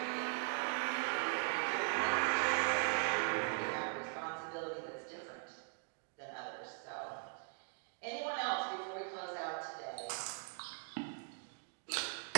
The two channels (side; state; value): left; silent; 52 dB below the other